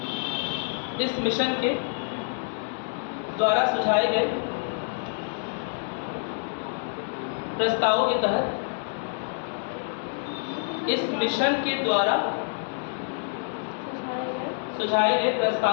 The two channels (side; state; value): right; silent; 55 dB below the other